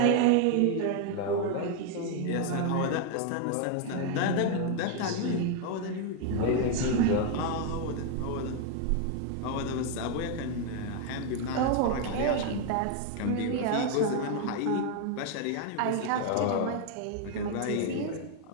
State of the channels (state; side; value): different; both; correlation 0.01